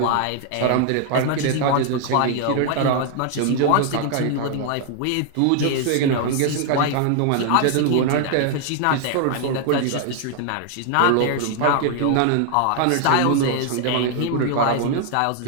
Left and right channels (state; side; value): different; both; correlation 0.00